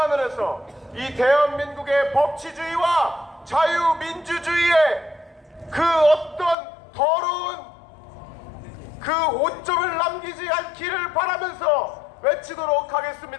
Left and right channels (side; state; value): right; drops out; at 6.6 s